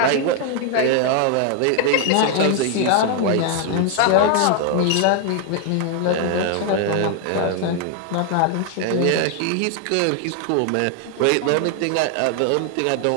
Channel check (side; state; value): both; different; correlation 0.00